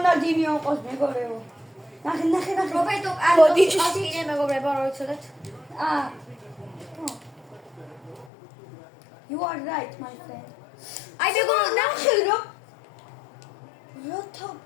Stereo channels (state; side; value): drops out; right; at 8.3 s